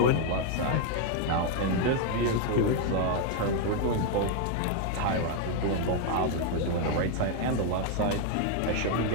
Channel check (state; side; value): different; both; correlation 0.01